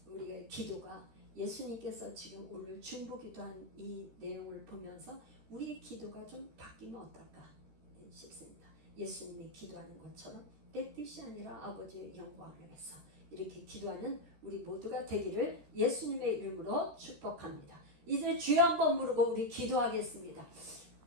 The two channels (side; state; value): left; late; 13 ms